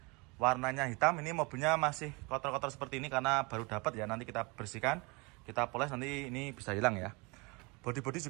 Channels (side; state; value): left; quieter; 27.9 dB